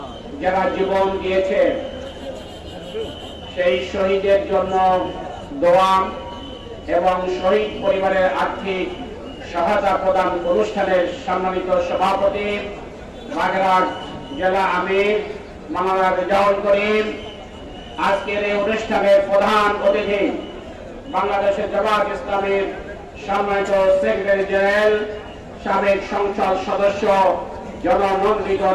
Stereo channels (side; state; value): both; identical; correlation 1.00